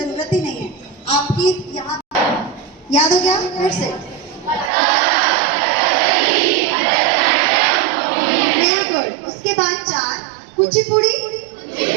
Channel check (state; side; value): drops out; left; at 4.7 s